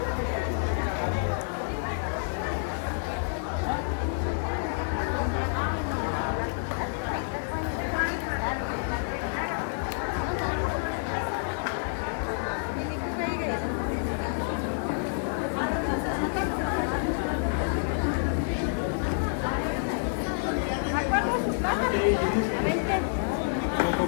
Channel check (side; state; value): right; silent; 59 dB below the other